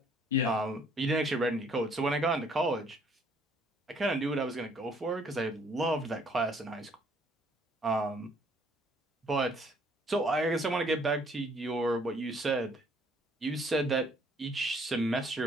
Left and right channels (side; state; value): both; normal; correlation 0.62